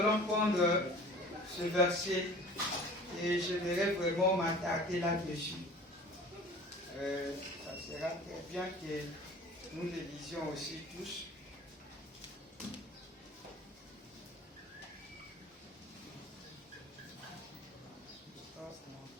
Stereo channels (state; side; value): normal; both; correlation 0.44